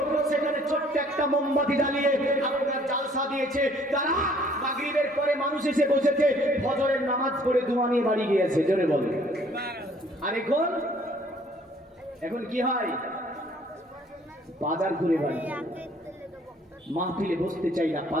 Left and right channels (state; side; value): normal; both; correlation 0.59